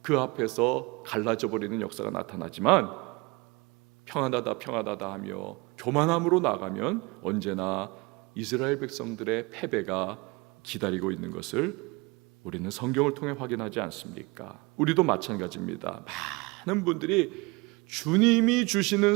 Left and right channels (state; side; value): quieter; left; 25.9 dB